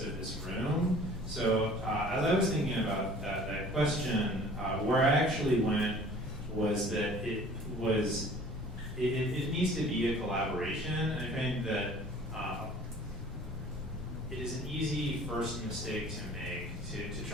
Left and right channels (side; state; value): both; normal; correlation 0.49